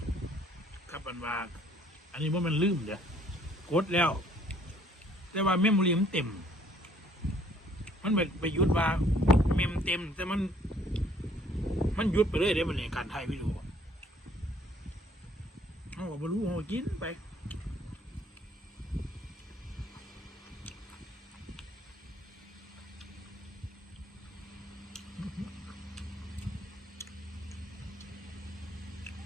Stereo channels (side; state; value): both; normal; correlation 0.61